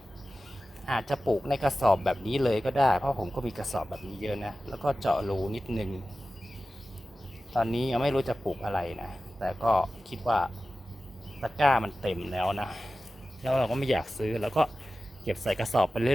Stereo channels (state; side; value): normal; both; correlation 0.95